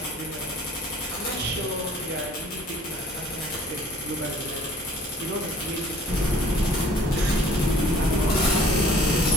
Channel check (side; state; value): both; normal; correlation 0.54